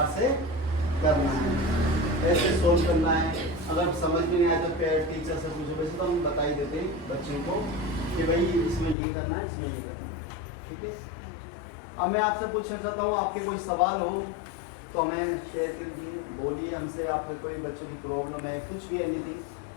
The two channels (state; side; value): drops out; right; at 9.0 s